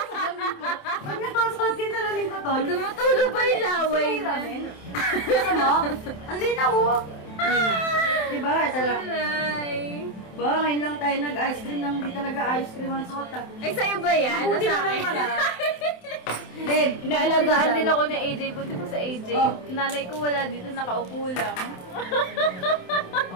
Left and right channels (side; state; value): right; late; 27 ms